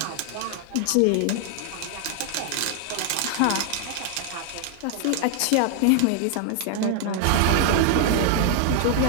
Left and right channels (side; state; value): both; different; correlation 0.00